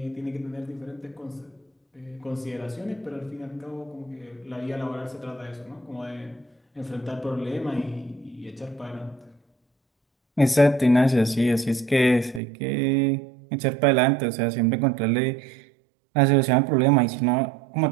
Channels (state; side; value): drops out; left; at 12.4 s